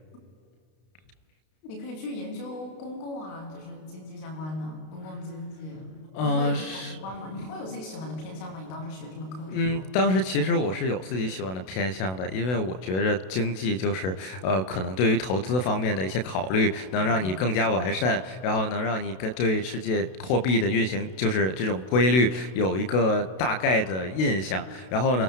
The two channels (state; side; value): late; right; 32 ms